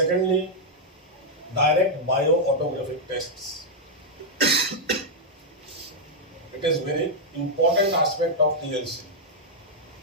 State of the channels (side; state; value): both; normal; correlation -0.04